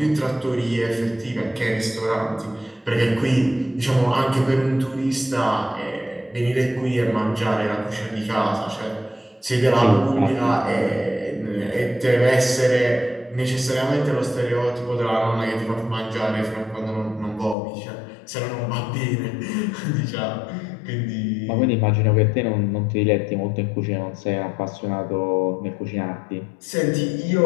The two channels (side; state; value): right; drops out; at 17.6 s